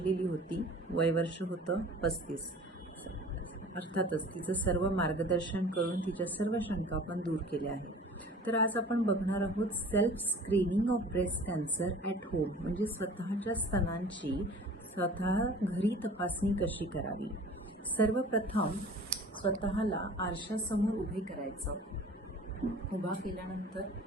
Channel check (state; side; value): normal; both; correlation 0.45